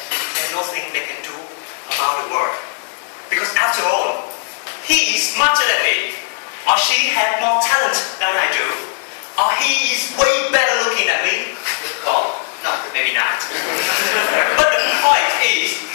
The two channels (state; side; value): silent; right; 67 dB below the other